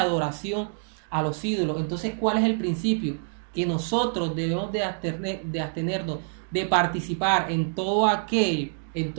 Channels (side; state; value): left; silent; digital silence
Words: a los ídolos. Entonces, ¿cuál es el principio? Que nosotros debemos de abstenernos de participar en todo